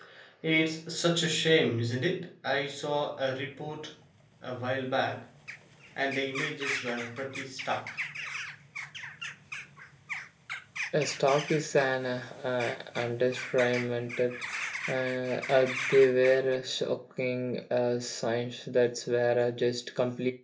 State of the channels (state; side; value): identical; both; correlation 1.00